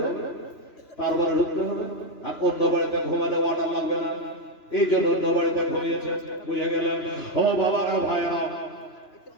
তারপরে ঢুকতে হবে। আর অন্য বাড়িতে ঘুমালে অর্ডার লাগবে না, এই জন্য অন্য বাড়িতে ঘুমিয়েছে। বুঝে গেলেন? ও বাবারা, ভাইরা,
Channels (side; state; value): right; late; 3.0 ms